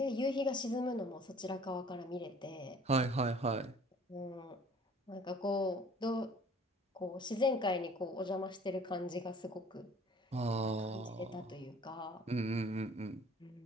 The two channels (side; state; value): both; normal; correlation 0.51